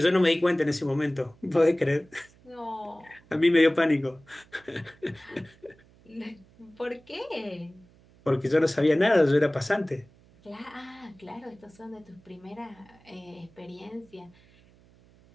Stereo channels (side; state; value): right; noise; hum, 28 dB below the sound